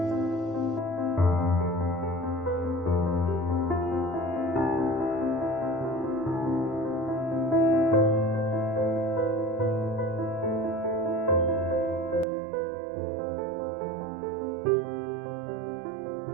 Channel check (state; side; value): drops out; left; at 12.2 s